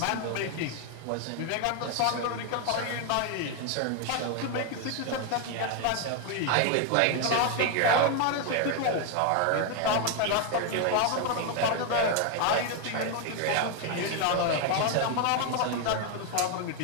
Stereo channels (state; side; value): different; both; correlation 0.01